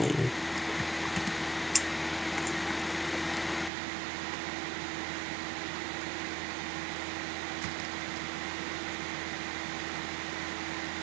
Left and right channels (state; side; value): drops out; left; at 3.7 s